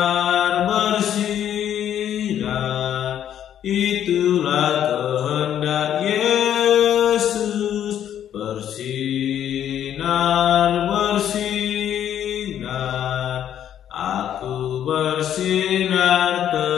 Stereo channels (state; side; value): quieter; right; 10.3 dB